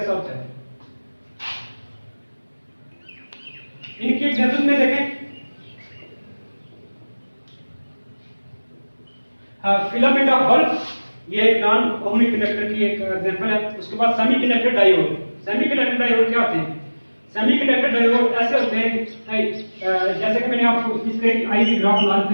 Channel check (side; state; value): both; inverted; correlation -1.00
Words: होता है। इनकी एग्जांपल में देखें, फिलामेंट ऑफ बल्ब, ये एक नॉन ओहमिक कंडक्टर की एक एग्जांपल है। उसके बाद सेमीकंडक्टर डायोड। सेमीकंडक्टर डायोड क्या होते हैं? सेमीकंडक्टर डायोड ऐसे होते हैं, जैसे कि मैंने आपको इसके आईवी ग्राफ बना